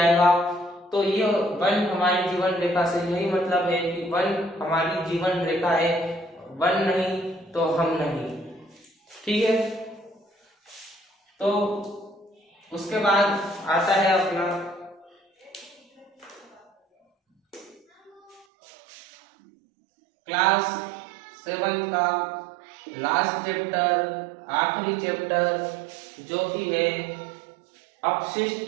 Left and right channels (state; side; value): drops out; left; at 18.4 s